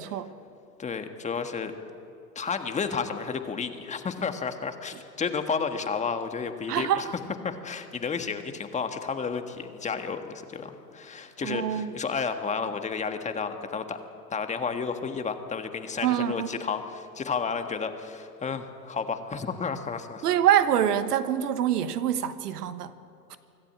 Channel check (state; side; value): normal; both; correlation 0.05